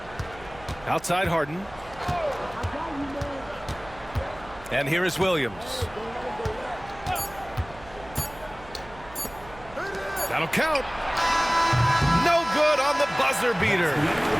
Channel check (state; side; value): noise; right; hum, 20 dB below the sound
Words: Outside Harden. And here is Williams. That'll count. No good on the buzzer beater.